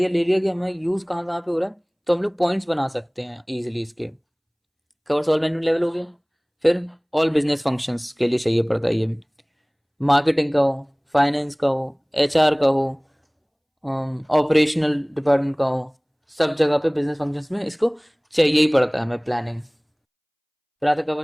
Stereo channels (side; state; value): both; identical; correlation 1.00